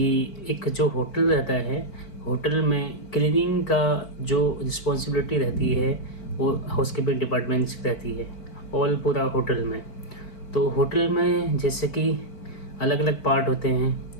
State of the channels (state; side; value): late; right; 4.5 ms